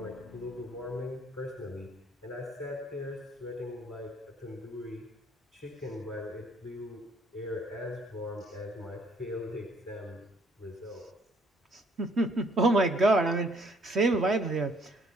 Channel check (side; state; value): both; normal; correlation 0.63